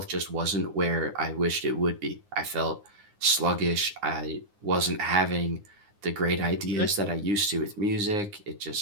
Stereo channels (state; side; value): late; left; 9.7 ms